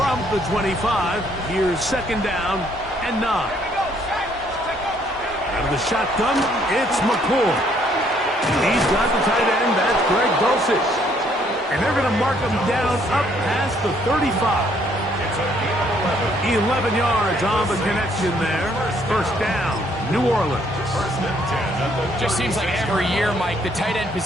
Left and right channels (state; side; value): normal; both; correlation 0.66